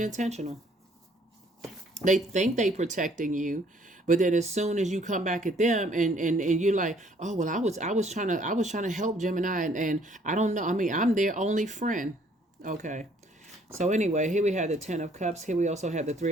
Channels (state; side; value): normal; both; correlation 0.62